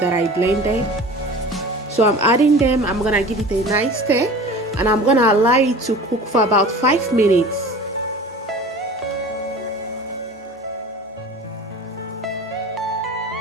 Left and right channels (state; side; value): normal; both; correlation 0.39